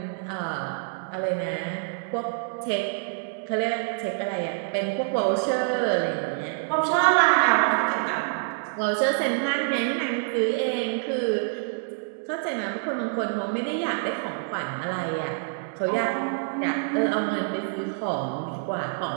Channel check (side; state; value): left; silent; digital silence